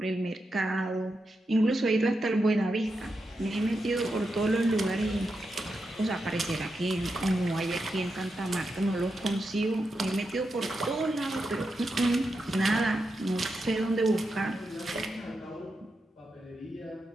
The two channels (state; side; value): normal; both; correlation 0.87